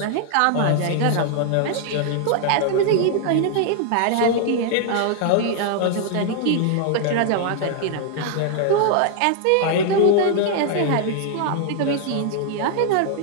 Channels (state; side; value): different; both; correlation 0.00